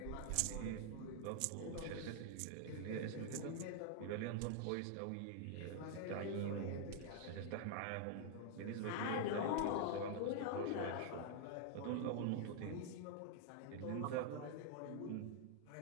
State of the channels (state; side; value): different; both; correlation 0.00